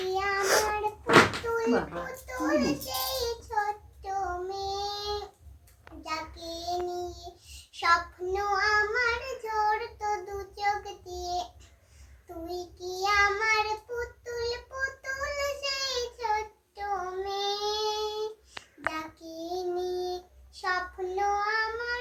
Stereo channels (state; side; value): identical; both; correlation 1.00